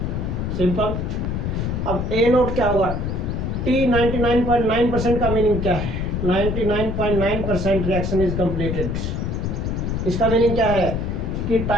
simple. अब ए नॉट क्या होगा, T 99.9% का मीनिंग क्या है, 99.9% रिएक्शन इज कंप्लीटेड, इसका मीनिंग क्या है कि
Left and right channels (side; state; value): left; noise; rumble, 2 dB below the sound